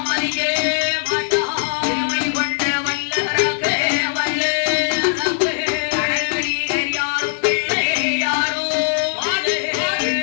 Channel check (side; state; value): right; silent; digital silence